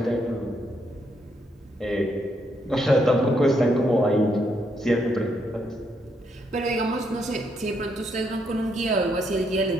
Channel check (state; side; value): normal; both; correlation 0.76